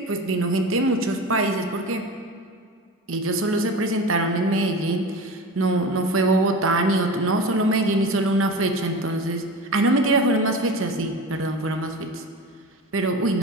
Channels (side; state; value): both; normal; correlation 0.31